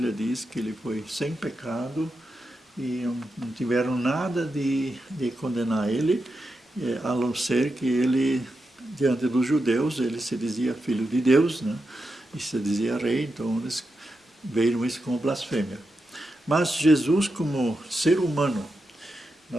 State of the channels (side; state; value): both; normal; correlation 0.88